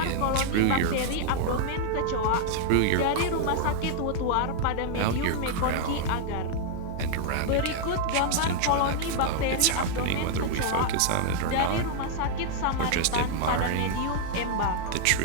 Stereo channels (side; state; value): both; different; correlation 0.00